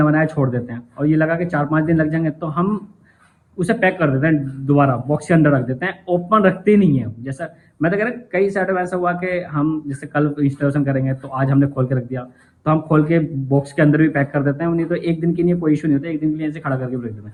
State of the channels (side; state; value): both; identical; correlation 1.00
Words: छोड़ देते हैं, और ये लगा कि 4-5 दिन लग जाएंगे, तो हम उसे पैक कर देते हैं, दोबारा बॉक्स के अंदर रख देते हैं, ओपन रखते ही नहीं है। जैसा मैं तो कह रहा कई साइड में ऐसा हुआ कि हम जैसे कल इंस्टॉलेशन करेंगे, तो आज हमने खोल के रख दिया, तो हम खोल के बॉक्स के अंदर भी पैक कर देते हैं, नहीं तो एक दिन के लिए कोई इशू नहीं होता, एक दिन के लिए ऐसे खड़ा करके रख देते हैं।